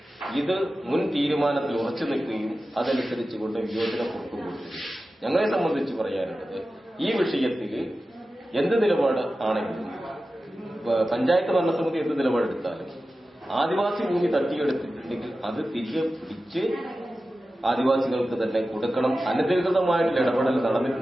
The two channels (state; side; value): normal; both; correlation 0.94